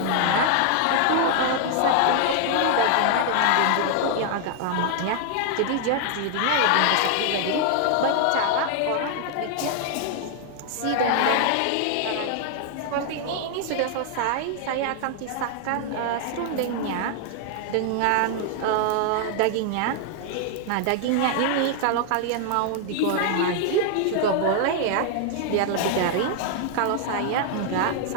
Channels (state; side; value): different; both; correlation 0.00